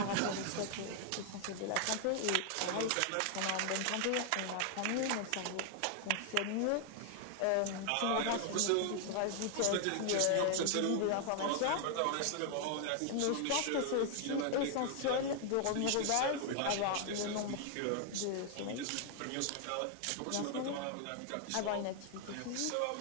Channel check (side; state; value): both; different; correlation 0.00